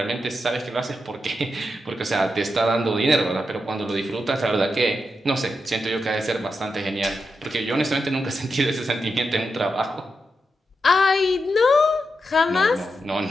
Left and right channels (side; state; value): both; normal; correlation 0.87